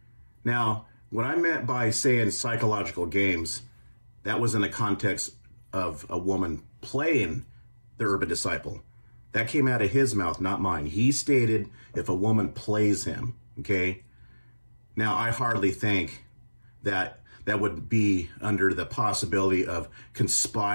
Now, what I meant by saying psychological games, that was in the context of a woman playing the Urban Disciple. That came out of his mouth, not mine. He stated if a woman plays him, okay? Now, I hardly think that that would be under the possibility of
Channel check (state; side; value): inverted; both; correlation -1.00